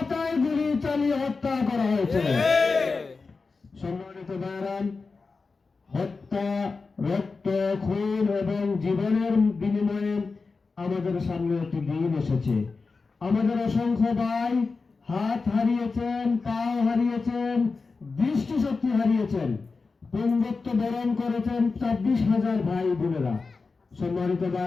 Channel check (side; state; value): right; quieter; 4.3 dB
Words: গুলি চালিয়ে হত্যা করা হয়েছে। সম্মানিত ভাইরান, হত্যা, রক্ত, খুন এবং জীবনের বিনিময়ে আমাদের সামনে একটি দিন এসেছে। আমাদের অসংখ্য ভাই হাত হারিয়েছেন, পাও হারিয়েছেন, দৃষ্টিশক্তি হারিয়েছেন, পুঙ্গত্ব বরণ করেছেন 26,000 ভাই বোনেরা। সম্মানিত